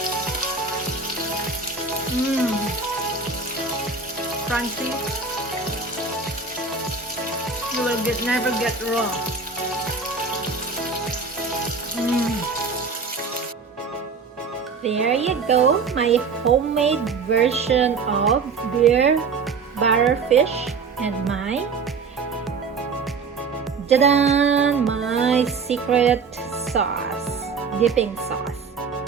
Crunchy. You will never get wrong. There you go, my homemade version of beer batter fish and my my secret sauce, dipping sauce.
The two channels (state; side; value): quieter; left; 4.9 dB